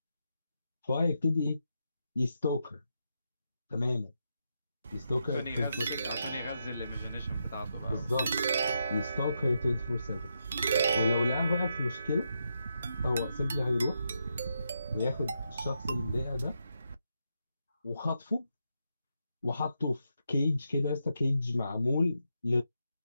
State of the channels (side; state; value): both; inverted; correlation -0.83